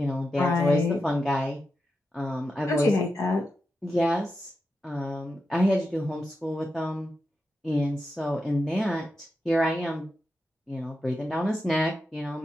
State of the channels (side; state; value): both; normal; correlation 0.88